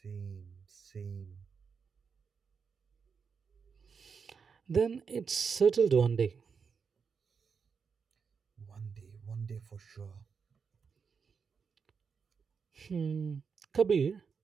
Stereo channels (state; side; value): quieter; left; 5.8 dB